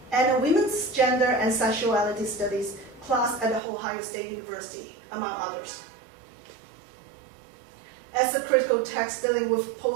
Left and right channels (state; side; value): drops out; left; at 3.6 s